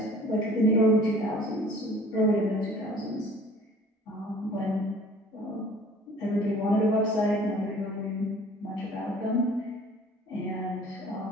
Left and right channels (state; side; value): normal; both; correlation 0.50